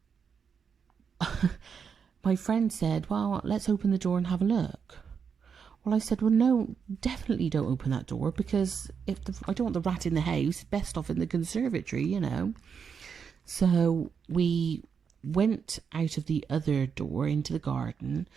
my friend said, well, let's open the door and have a look. Well, I said, well, no, definitely don't open that door because I don't want the rat in the house, best off in the conservatory, you know. So we went out of the other door into the garden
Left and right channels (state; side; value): quieter; left; 6.5 dB